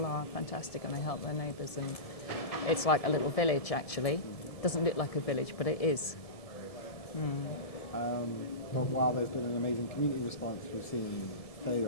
are fantastic and they help their neighbours, and it's like a little village, actually. It doesn't look like a village, but it is. But while there's been an amazing community response, we've seen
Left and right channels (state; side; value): late; right; 1.7 ms